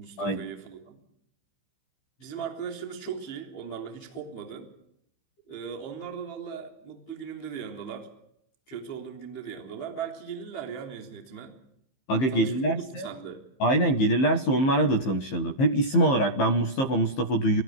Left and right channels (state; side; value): late; right; 15 ms